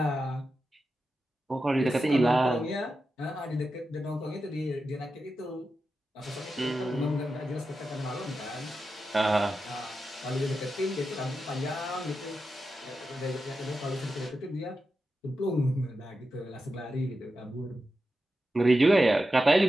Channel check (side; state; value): both; normal; correlation 0.90